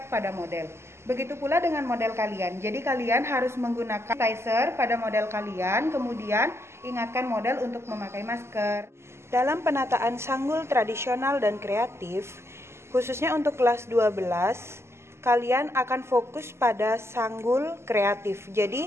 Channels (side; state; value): left; late; 0.13 ms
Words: pada model. Begitu pula dengan model kalian. Jadi kalian harus menggunakan sanitizer pada model kalian, kemudian ingatkan model untuk memakai masker. Dalam penataan sanggul tradisional dan kreatif, khususnya untuk kelas 12, kalian akan fokus pada sanggul kreatif. Jadi